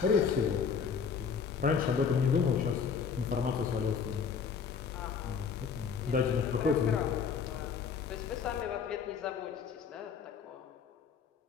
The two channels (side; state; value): right; quieter; 6.3 dB